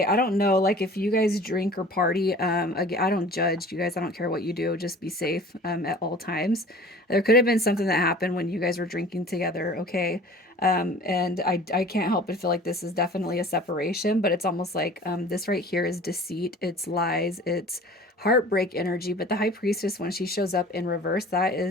I don't know, like if you guys drink or party, again, I don't judge you guys. I don't care what you do. Just be safe at all times. There could have been something that happened when you guys were drinking together. Okay. And I can't help but feel like this is definitely a separation, but it's almost like this right here is deceit. It's lies. It's heartbreak energy. But the High Priestess, when she shows up in reverse, that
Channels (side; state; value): both; normal; correlation 0.45